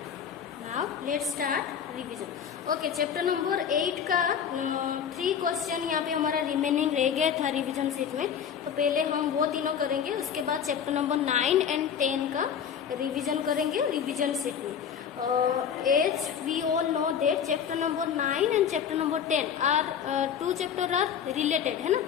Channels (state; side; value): quieter; right; 8.0 dB